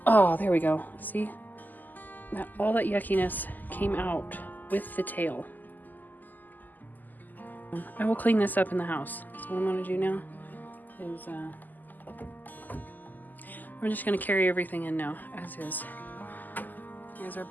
Oh, there we go. See? All that yuckiness came out with the tail. I will clean this up in the house. So what I'm gonna do now is we're just gonna carry everything in now as is. Here's our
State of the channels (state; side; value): late; right; 0.085 ms